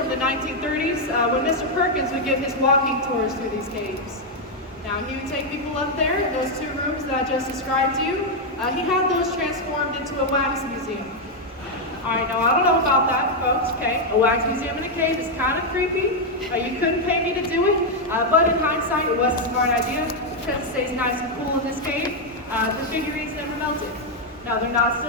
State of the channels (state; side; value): normal; both; correlation 0.01